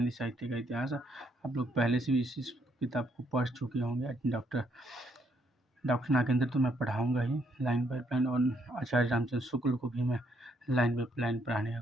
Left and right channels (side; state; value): both; normal; correlation 0.73